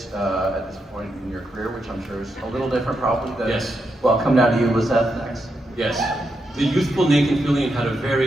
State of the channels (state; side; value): normal; both; correlation 0.83